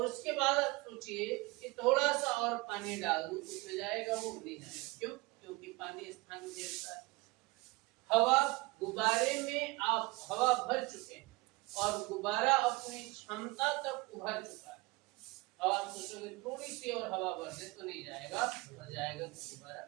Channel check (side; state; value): left; quieter; 23.7 dB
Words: उसके बाद आप सोचिए कि थोड़ा सा और पानी डाल दूं उसमें जाएगा, वो नहीं जाएगा। क्यों? क्योंकि पानी स्थान घेरता है। हवा, गुब्बारे में आप हवा भर चुके हैं और गुब्बारा अपनी क्षमता तक उभर चुका है। अब आप सोचोगे थोड़ी सी और हवा भर दे तो नहीं जाएगा, भर जाएगा तो गुब्बारा,